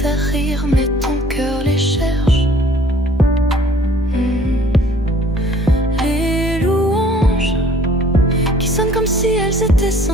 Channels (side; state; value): both; normal; correlation 0.55